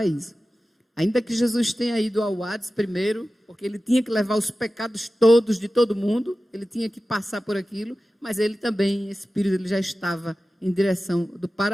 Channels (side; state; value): both; normal; correlation 0.95